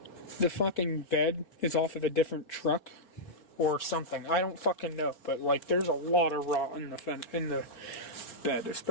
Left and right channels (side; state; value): right; late; 4.8 ms